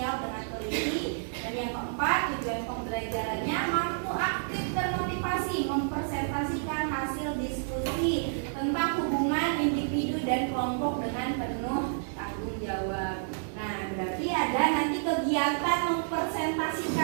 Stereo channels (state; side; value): silent; left; digital silence